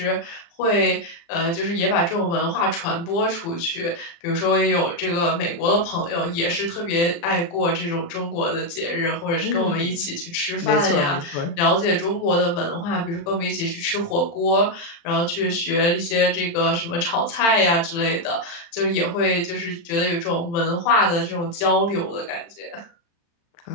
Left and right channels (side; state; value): right; late; 35 ms